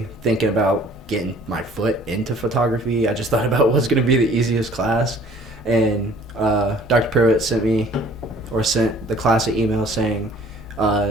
thinking about getting my foot into photography. I just thought about what's going to be the easiest class. And Dr. Pruitt sent the class an email saying,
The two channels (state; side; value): normal; both; correlation 0.54